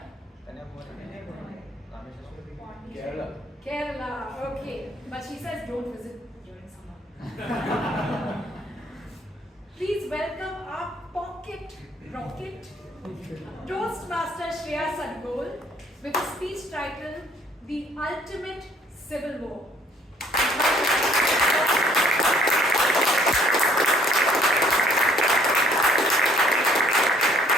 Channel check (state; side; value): normal; both; correlation 0.61